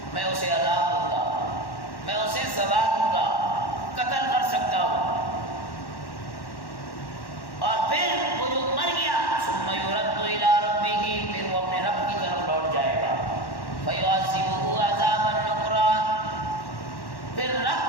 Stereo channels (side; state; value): right; late; 1.1 ms